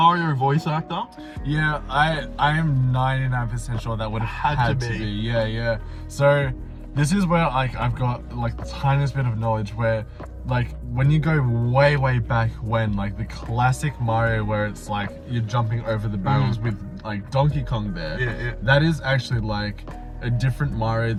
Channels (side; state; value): both; identical; correlation 1.00